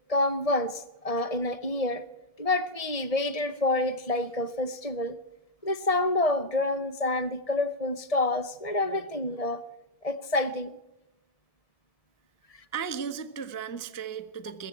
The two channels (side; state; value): right; late; 1.7 ms